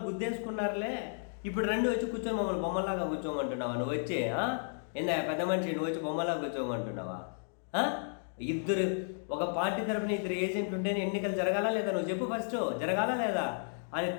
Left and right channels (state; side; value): silent; right; digital silence